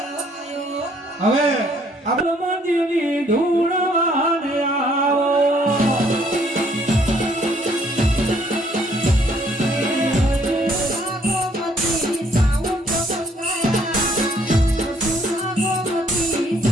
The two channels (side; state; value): both; normal; correlation 0.64